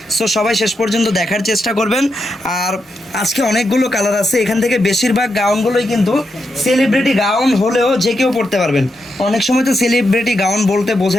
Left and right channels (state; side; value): normal; both; correlation 0.85